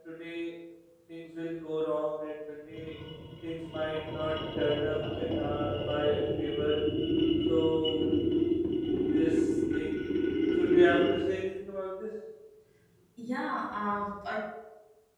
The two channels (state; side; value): identical; both; correlation 1.00